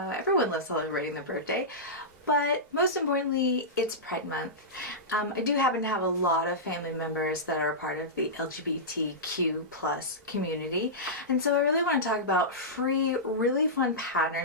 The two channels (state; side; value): normal; both; correlation -0.14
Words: loves celebrating their birthday. But most importantly, it's Pride Month. I do happen to have a lot of family members that are part of the LGBTQ plus community. And so I really want to talk about free, really fun